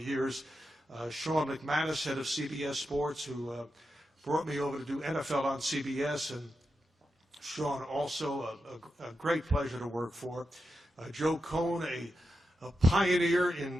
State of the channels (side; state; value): both; normal; correlation 0.88